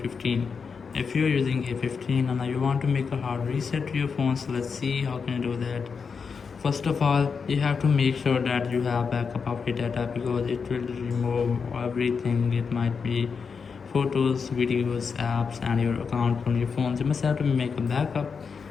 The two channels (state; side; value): quieter; right; 5.6 dB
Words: If you're using A15 and you want to make a hard reset to your phone, so let's see how can you do that. First of all, you have to make sure that you have backup of your data because it will remove everything. It might be photos, videos, apps and your account from your phone. You must have to make a backup,